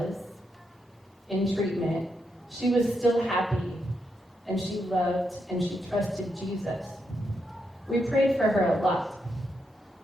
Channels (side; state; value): both; normal; correlation 0.82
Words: in treatment, she was still happy, and she loved and she trusted Jesus. We prayed for her a lot,